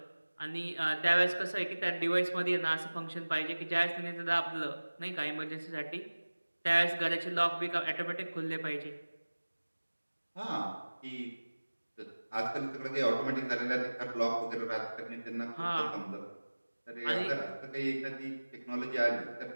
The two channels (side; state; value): both; inverted; correlation -1.00